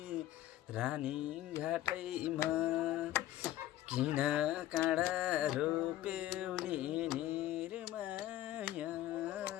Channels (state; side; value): quieter; right; 13.8 dB